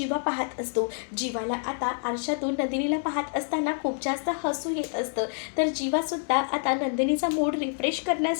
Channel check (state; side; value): silent; right; 60 dB below the other